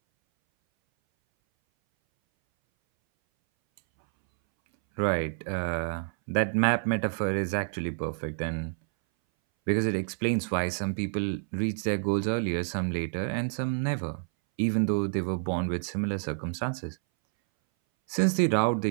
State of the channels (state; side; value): silent; left; 59 dB below the other